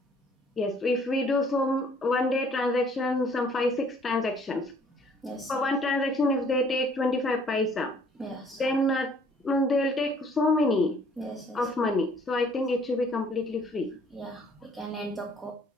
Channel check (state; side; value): normal; both; correlation 0.59